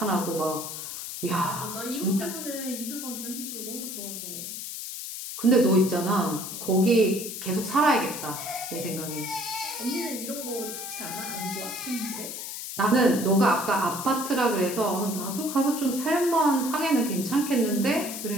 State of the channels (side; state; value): left; noise; hiss, 7 dB below the sound